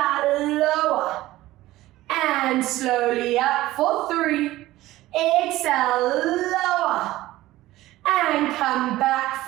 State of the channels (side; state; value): left; quieter; 16.6 dB